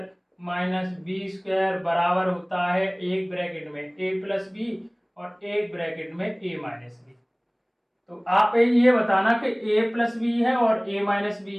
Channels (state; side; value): identical; both; correlation 1.00